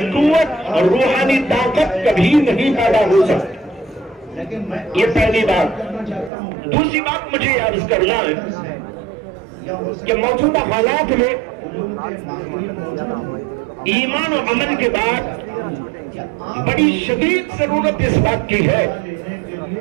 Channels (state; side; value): drops out; left; at 6.3 s